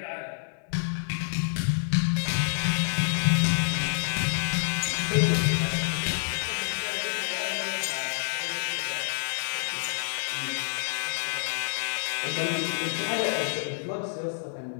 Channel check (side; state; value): right; silent; 59 dB below the other